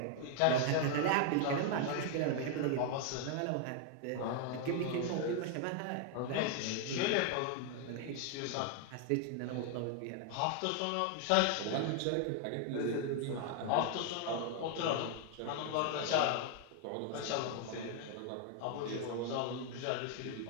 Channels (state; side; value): different; both; correlation 0.00